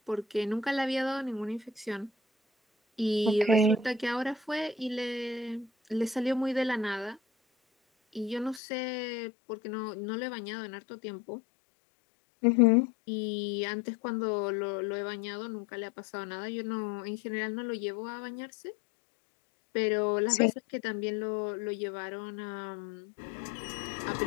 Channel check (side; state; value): right; drops out; at 8.6 s